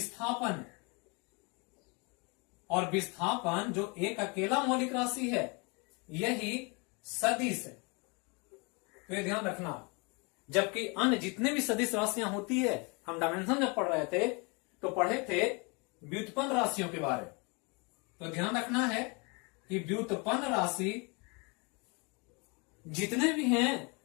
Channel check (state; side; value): quieter; right; 30.8 dB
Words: और विस्थापन जो एक अकेला मौलिक राशि है यही सदिश है। तो ये ध्यान रखना। जबकि अन्य जितने भी सदिश राशियां होती है, हम डायमेंशन जब पढ़ रहे थे तो पढ़े थे व्युत्पन्न राशियों के बारे में। तो ध्यान रखना है कि व्युत्पन्न राशि जितने भी हैं